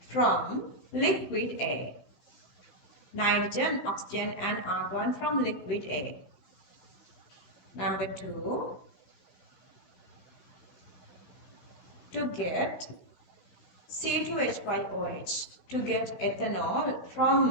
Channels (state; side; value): late; right; 16 ms